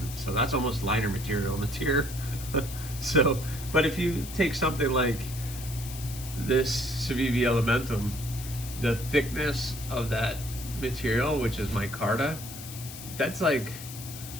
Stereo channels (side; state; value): left; noise; hiss, 12 dB below the sound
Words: So that's almost liner material on the tier. So, but if you take something like this Civivi Elementum, the thickness of that material, which is micarta, that's like